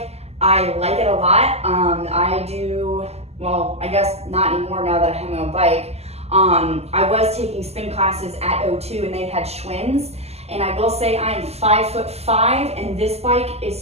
I like it a lot. I do, well, I guess not anymore now that I have my own bike. I was taking spin classes at O2 and they had Schwinn's, and I will say I am 5'5", and this bike is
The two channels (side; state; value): left; late; 0.30 ms